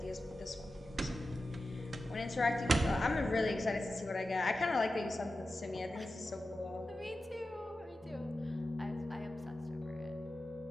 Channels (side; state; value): both; normal; correlation 0.92